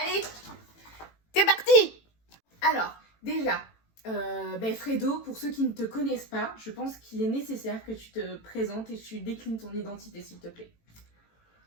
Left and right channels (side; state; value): right; late; 18 ms